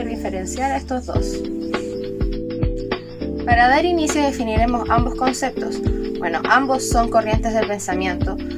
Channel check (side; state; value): both; identical; correlation 1.00